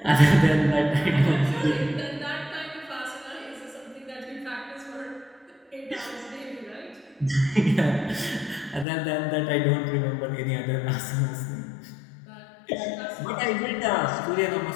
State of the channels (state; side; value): drops out; right; at 8.8 s